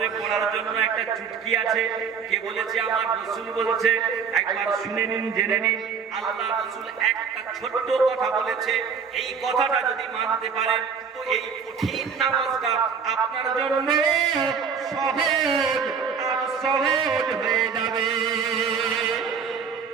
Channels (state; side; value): quieter; left; 6.2 dB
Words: পড়ার জন্য একটা চুটকি আছে। কে বলেছে? আমার রাসূল বলছে। একবার শুনে নিন, জেনে নিন। আল্লাহ রাসূল একটা ছোট্ট কথা বলেছে, এই কথাটা যদি মানতে পারেন তো এই কঠিন নামাজটা আপনার জন্য সহজ আর সহজ হয়ে যাবে।